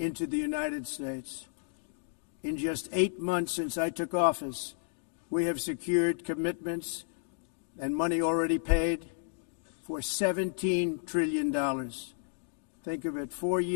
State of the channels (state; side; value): silent; right; digital silence